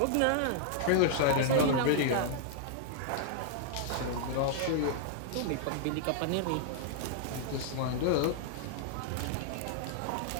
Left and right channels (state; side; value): different; both; correlation -0.01